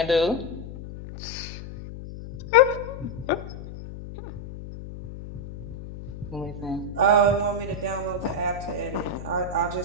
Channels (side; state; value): left; noise; hum, 11 dB below the sound